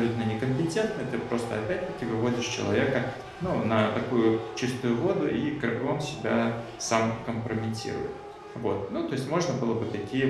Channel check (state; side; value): identical; both; correlation 1.00